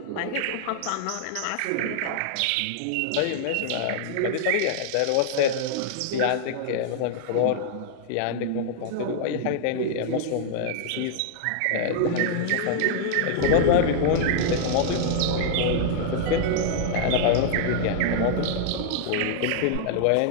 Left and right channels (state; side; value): different; both; correlation -0.01